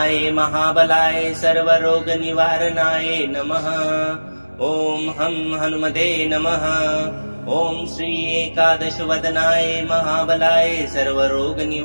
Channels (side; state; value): both; inverted; correlation -1.00